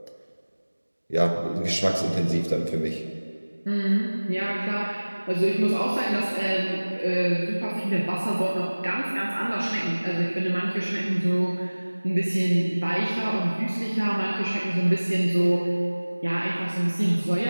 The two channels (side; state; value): both; inverted; correlation -1.00